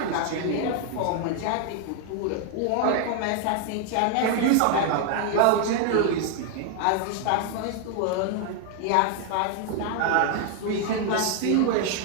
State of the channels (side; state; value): both; different; correlation 0.00